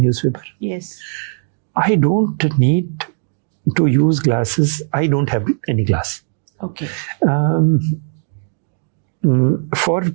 Yes. I don't need to use glasses. I don't have any glass. Okay. For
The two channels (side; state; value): left; silent; digital silence